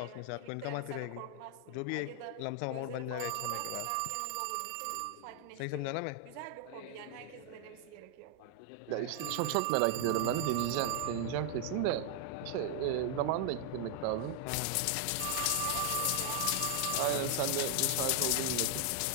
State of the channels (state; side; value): different; both; correlation 0.00